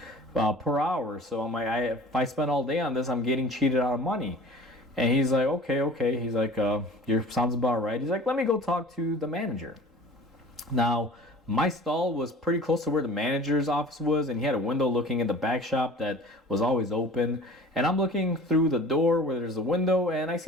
per hour. So I'm like, if I spend all day on this, I'm getting cheated out of money. And he's like, okay. He's like, your sounds about right. He's like, "Let me go talk to the manager." Now, my stall was pretty close to where the manager's office was, and he had a window looking at the back shop that was always open. And I'm looking through the door where there's a window, and I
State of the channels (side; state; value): both; normal; correlation 0.44